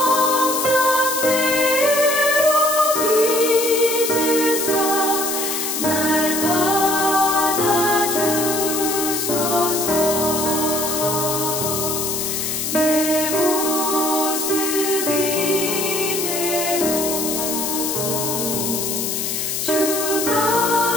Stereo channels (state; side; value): noise; left; hiss, 2 dB below the sound